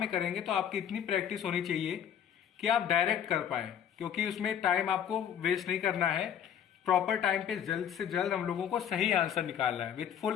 करेंगे तो आपकी इतनी प्रैक्टिस होनी चाहिए कि आप डायरेक्ट कर पाए, क्योंकि उसमें टाइम आपको वेस्ट नहीं करना है। प्रॉपर टाइम पे जल्द से जल्द हम लोगों को सही आंसर निकालना है विथ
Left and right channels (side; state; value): right; quieter; 9.1 dB